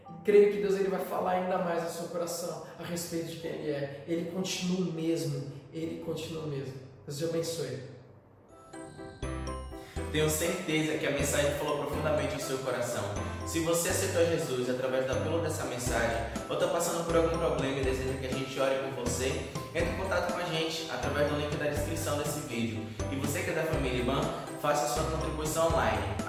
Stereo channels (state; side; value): identical; both; correlation 1.00